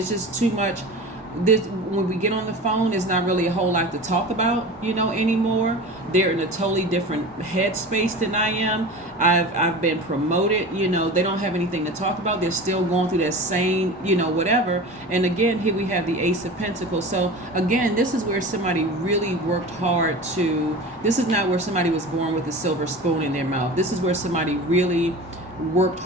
just too much. When we get on the phone, there's not really a whole lot to talk about, anymore. They're in a totally different headspace than I am. I've been promoted, they don't have anything to talk about. They're still going through that same, whatever. And again, here we have the Ace of Pentacles. So again, this is where somebody really worked hard this is not where somebody was born with a silver spoon in their mouth. This is where somebody really worked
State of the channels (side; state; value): both; normal; correlation 0.33